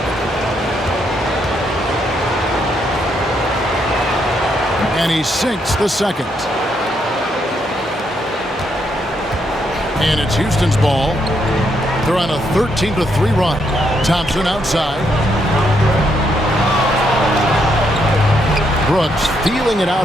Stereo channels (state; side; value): normal; both; correlation 0.76